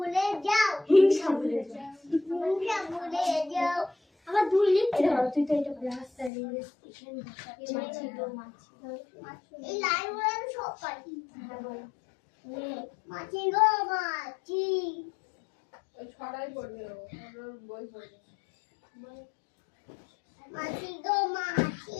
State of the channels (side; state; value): right; drops out; at 6.3 s